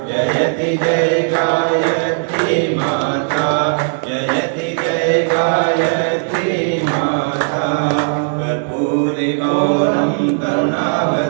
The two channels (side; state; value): left; silent; 68 dB below the other